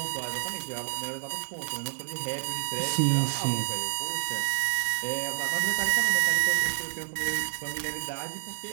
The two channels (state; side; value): silent; left; digital silence